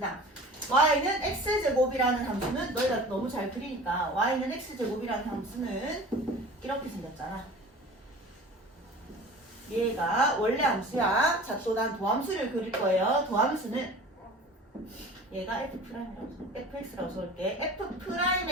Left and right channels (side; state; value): both; normal; correlation 0.40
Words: 다음 y는 x제곱이라는 함수는 너희가 너무 잘 그리니까 y는 x제곱이라는 함수는 이렇게 생겼잖아. 얘가 원래 함수야. 자, 또 난 도함수를 그릴 거예요. 도함수는 얘가 fx라고 써볼게.